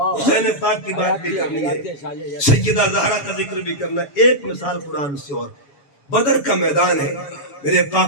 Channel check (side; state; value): right; late; 7.1 ms